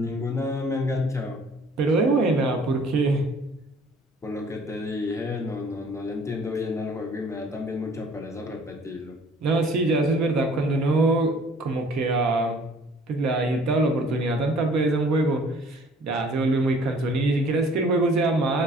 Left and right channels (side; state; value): both; normal; correlation 0.54